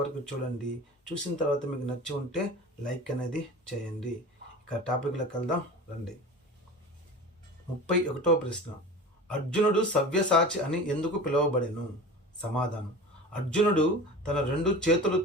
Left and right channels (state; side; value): normal; both; correlation 0.35